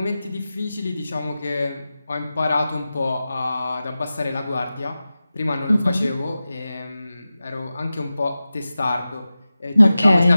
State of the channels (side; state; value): both; inverted; correlation -0.95